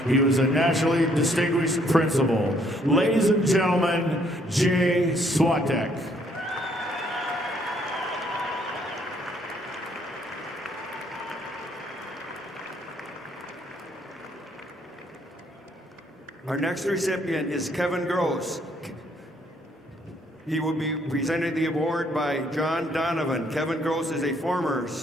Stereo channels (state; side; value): normal; both; correlation 0.67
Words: he was a nationally distinguished principal. Ladies and gentlemen, Jay Swatek. Our next recipient is Kevin Gross. He will be presenting the award by John Donovan. Kevin Gross is a former